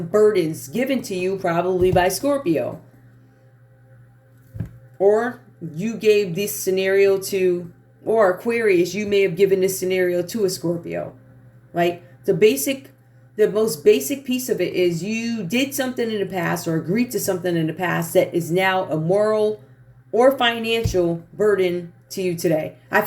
burdens given to you probably by Scorpio. Or you gave this scenario to, or Aquarius, you may have given this scenario to a Scorpio. Right? The most basic piece of it is you did something in the past or agreed to something in the past that is now a moral or financial burden to you today. I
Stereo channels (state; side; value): identical; both; correlation 1.00